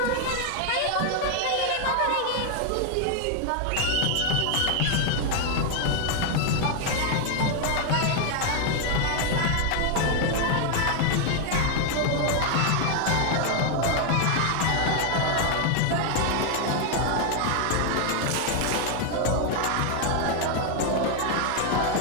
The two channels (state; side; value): different; both; correlation 0.00